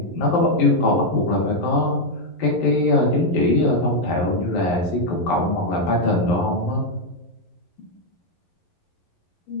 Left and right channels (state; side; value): late; right; 11 ms